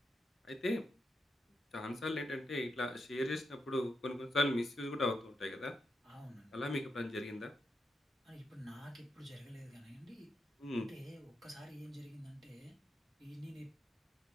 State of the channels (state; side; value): normal; both; correlation 0.84